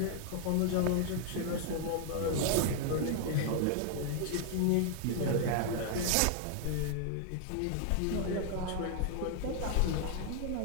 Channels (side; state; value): both; different; correlation 0.00